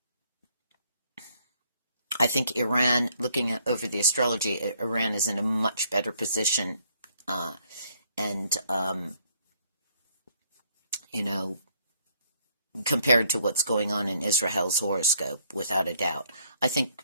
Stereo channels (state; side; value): inverted; both; correlation -0.66